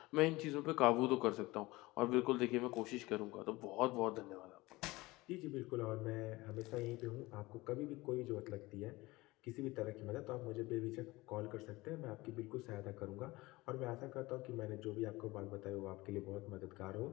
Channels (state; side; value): quieter; right; 20.7 dB